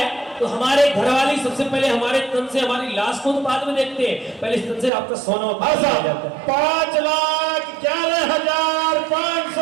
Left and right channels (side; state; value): left; drops out; at 4.9 s